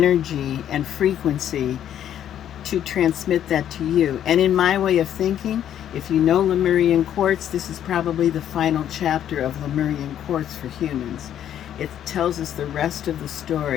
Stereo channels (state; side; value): quieter; right; 10.4 dB